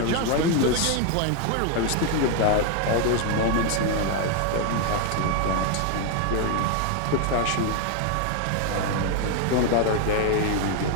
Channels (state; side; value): different; both; correlation 0.01